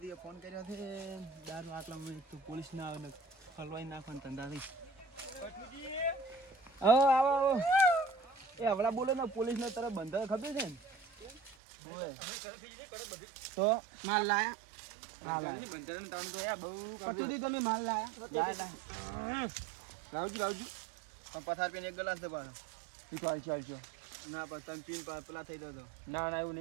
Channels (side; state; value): left; drops out; at 11.6 s